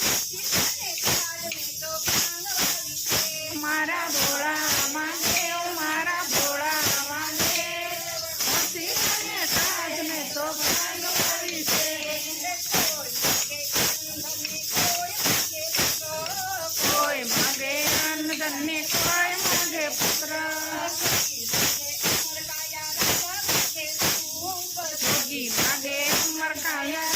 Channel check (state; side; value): identical; both; correlation 1.00